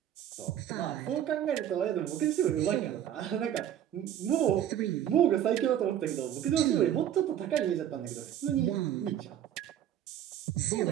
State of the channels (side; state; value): left; quieter; 10.7 dB